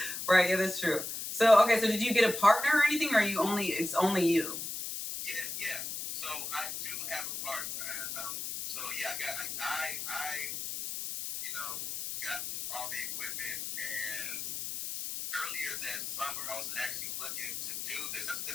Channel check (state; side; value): noise; left; hiss, 5 dB below the sound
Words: Right. Yeah, that's true. So okay, so did you get a partner or anything, or it's only you? Yeah. So I do have a partner. I got all the equipment, and earlier that summer I was actually looking to do this.